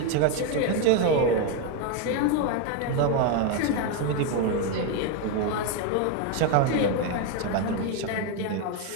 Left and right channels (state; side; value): different; both; correlation 0.02